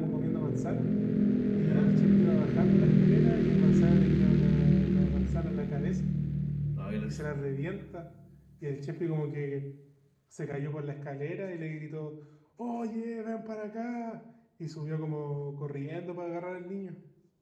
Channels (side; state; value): both; identical; correlation 1.00